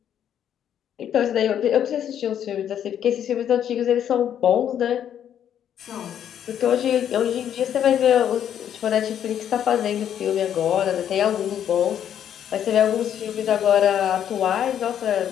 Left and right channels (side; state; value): right; quieter; 9.7 dB